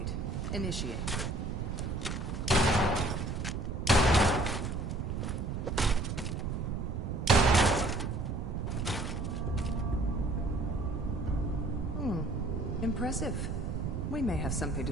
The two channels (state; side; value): noise; right; rumble, 3 dB below the sound